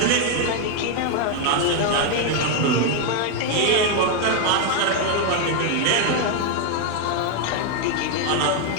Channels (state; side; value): different; both; correlation 0.01